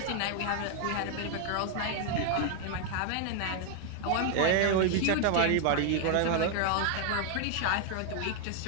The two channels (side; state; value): both; different; correlation 0.01